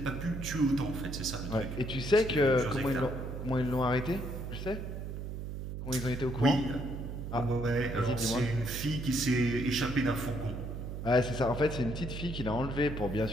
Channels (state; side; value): noise; right; hum, 6 dB below the sound